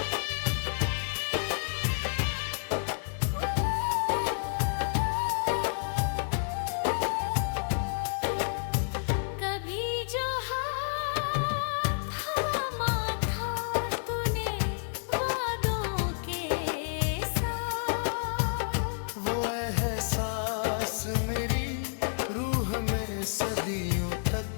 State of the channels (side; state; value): right; silent; digital silence